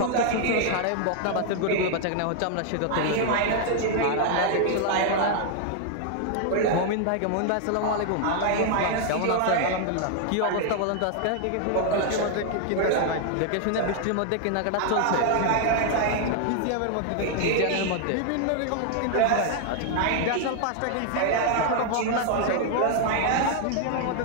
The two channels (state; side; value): different; both; correlation 0.00